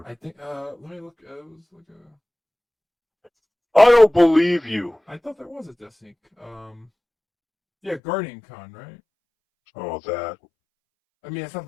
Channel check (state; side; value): drops out; right; at 8.0 s